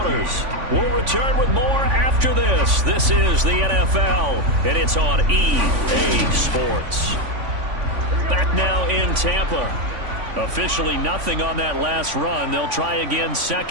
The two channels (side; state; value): left; late; 3.5 ms